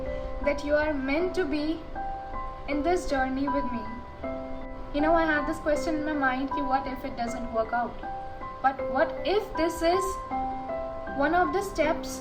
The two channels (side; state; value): both; identical; correlation 1.00